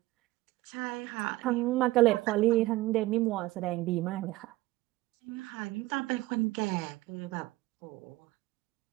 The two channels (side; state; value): left; quieter; 18.8 dB